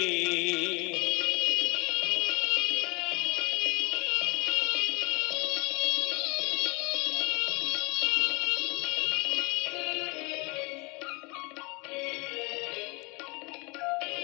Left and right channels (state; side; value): quieter; right; 28.1 dB